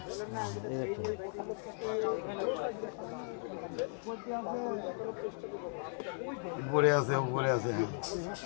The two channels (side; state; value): right; silent; 53 dB below the other